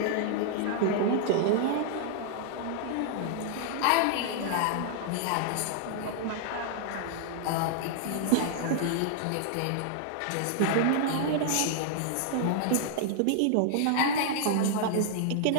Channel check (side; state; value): both; different; correlation -0.01